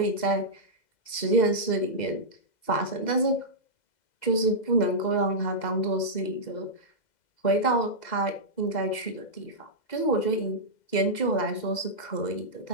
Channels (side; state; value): right; late; 2.0 ms